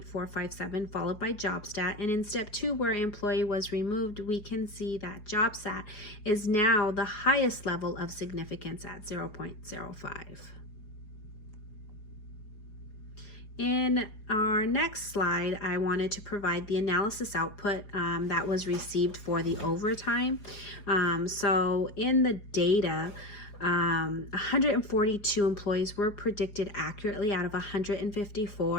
followed by job stat. And in step 2, where employee was removed, we can see that job stat is now the highest level of significance at 0.05. In our next slide, I wanted to provide the analysis output that was received for the overtime. So in the data, 142 employees were predicted accurately out of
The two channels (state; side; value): late; right; 4.8 ms